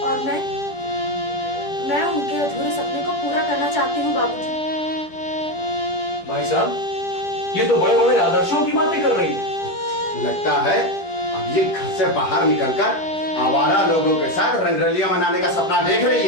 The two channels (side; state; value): right; late; 10 ms